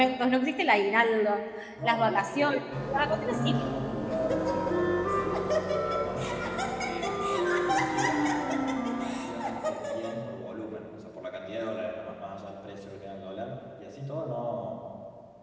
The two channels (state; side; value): identical; both; correlation 1.00